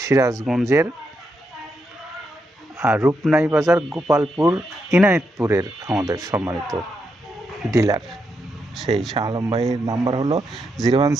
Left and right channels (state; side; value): normal; both; correlation 0.82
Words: সিরাজগঞ্জের রূপনাই বাজার, গোপালপুর, ইনায়েতপুরের আমাদের সম্মানিত ডিলার। সেই শাহ আলম ভাইয়ের নাম্বার হলো